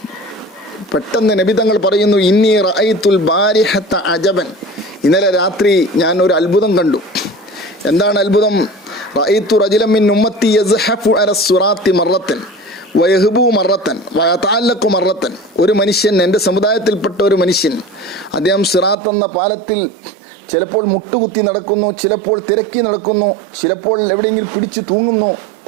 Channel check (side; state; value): left; drops out; at 18.9 s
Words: പെട്ടെന്ന് നബി തങ്ങൾ പറയുന്നു, ഇന്നി റഅയ്തുൽ ബാരിഹത അജബൻ, ഇന്നലെ രാത്രി ഞാൻ ഒരു അത്ഭുതം കണ്ടു. എന്താണ് അത്ഭുതം? റഅയ്തു റജുലൻ മിൻ ഉമ്മത്തി യസ്ഹഫു അല സിറാത്തി മറത്തൻ വയഹ്ബു മറത്തൻ വയതഅല്ലഖു മറത്തൻ. ഒരു മനുഷ്യൻ, എൻ്റെ സമുദായത്തിൽപ്പെട്ട ഒരു മനുഷ്യൻ, അദ്ദേഹം സിറാത്ത് എന്ന പാലത്തിൽ ചിലപ്പോൾ മുട്ടുകുത്തി നടക്കുന്നു, ചിലപ്പോൾ തിരക്കി നടക്കുന്നു, ചിലപ്പോൾ എവിടെയെങ്കിലും പിടിച്ചു തൂങ്ങുന്നു,